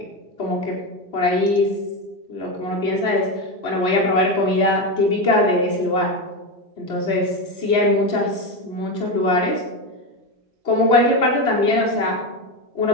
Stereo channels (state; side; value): late; right; 3.0 ms